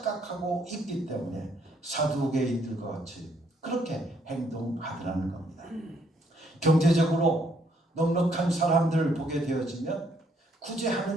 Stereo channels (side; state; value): both; normal; correlation 0.69